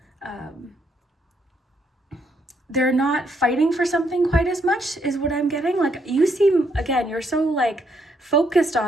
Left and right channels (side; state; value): both; normal; correlation 0.74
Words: they're not fighting for something quite as much is what I'm getting. Like, you seem, again, you're so like focused